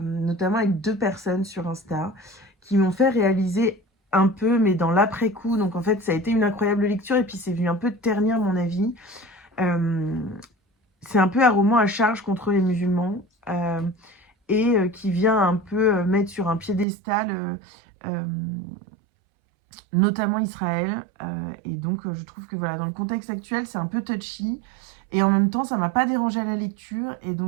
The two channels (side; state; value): left; drops out; at 16.9 s